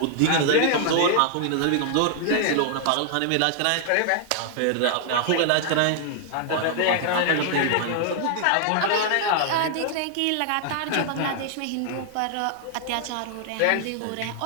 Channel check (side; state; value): both; different; correlation 0.00